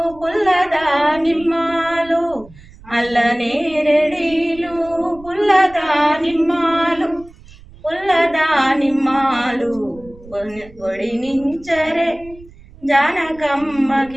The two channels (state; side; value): noise; right; rumble, 22 dB below the sound